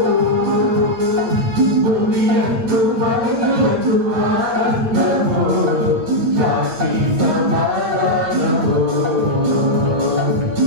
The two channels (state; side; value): late; left; 8.9 ms